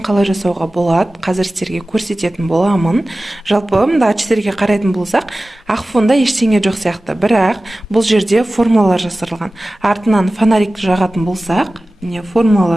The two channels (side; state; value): both; normal; correlation 0.96